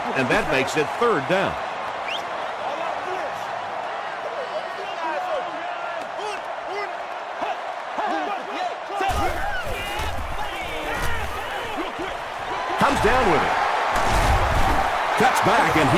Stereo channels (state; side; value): identical; both; correlation 1.00